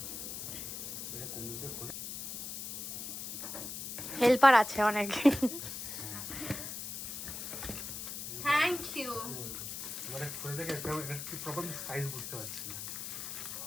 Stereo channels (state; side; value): noise; left; hiss, 6 dB below the sound